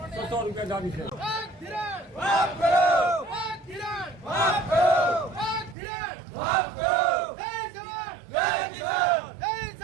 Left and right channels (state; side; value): drops out; left; at 5.8 s